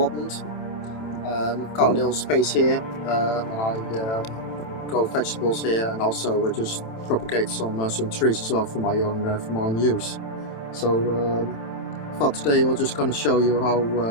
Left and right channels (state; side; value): late; right; 27 ms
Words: I've got a little space here and I grow vegetables here, and also just propagate some trees as well for my own use. So I thought today we're just going to show you